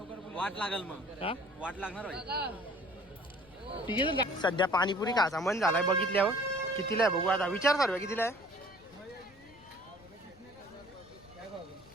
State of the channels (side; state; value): left; noise; rumble, 26 dB below the sound